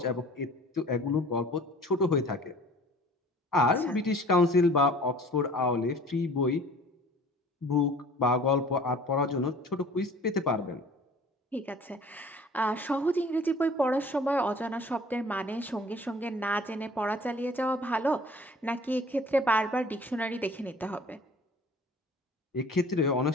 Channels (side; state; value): both; normal; correlation 0.48